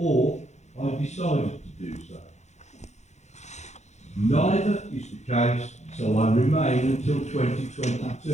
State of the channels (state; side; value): late; right; 0.33 ms